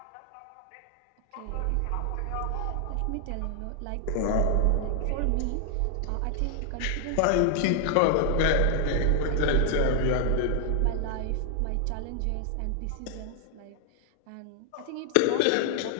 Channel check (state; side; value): different; both; correlation 0.00